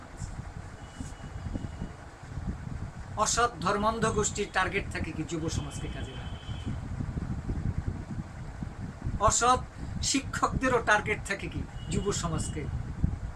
অসৎ ধর্মান্ধ গোষ্ঠীর টার্গেট থাকে কি? যুব সমাজকে কাজে লাগা। অসৎ শিক্ষকদেরও টার্গেট থাকে কি? যুব সমাজকে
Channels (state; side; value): identical; both; correlation 1.00